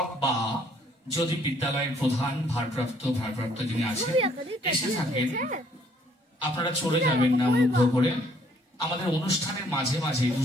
বা যদি বিদ্যালয়ের প্রধান ভারপ্রাপ্ত যিনি আছেন এসে থাকেন, আপনারা চলে যাবেন না মুগ্ধ করে। আমাদের অনুষ্ঠানের মাঝে মাঝে,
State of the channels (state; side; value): normal; both; correlation 0.64